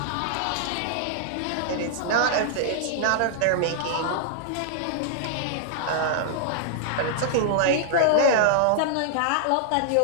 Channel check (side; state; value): both; different; correlation -0.01